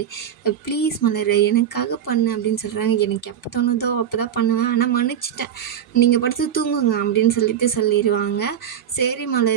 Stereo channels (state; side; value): quieter; left; 9.3 dB